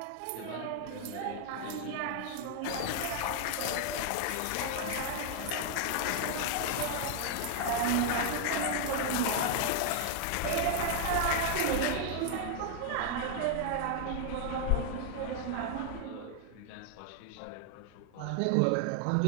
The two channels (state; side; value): different; both; correlation 0.00